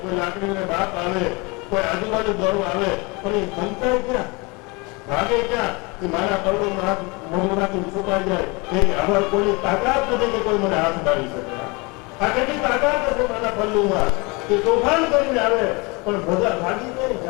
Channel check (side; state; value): right; quieter; 27.4 dB